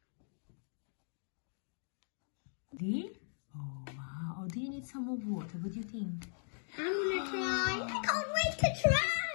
bit. Oh, wow. Oh, do you need some more water? What do you think? I'm gonna try. I can't wait to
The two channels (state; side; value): silent; right; digital silence